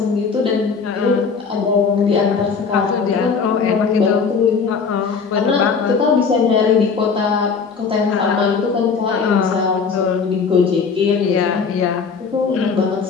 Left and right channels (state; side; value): quieter; right; 5.5 dB